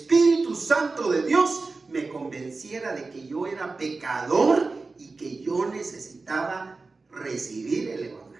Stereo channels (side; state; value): left; quieter; 3.8 dB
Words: Santo de Dios me convenciera de que yo era pecador y que yo necesitaba recibir el